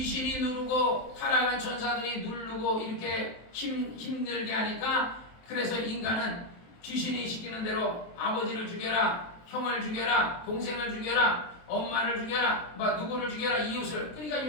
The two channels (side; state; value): right; late; 23 ms